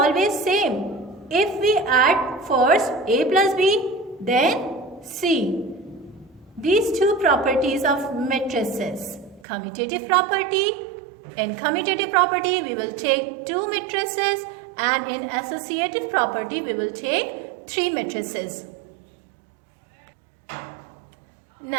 same. If we add first A plus B, then C. These two properties of matrices, commutative property. In commutative property, we will take two matrices, and in associative property, we will take three matrices.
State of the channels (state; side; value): drops out; left; at 9.5 s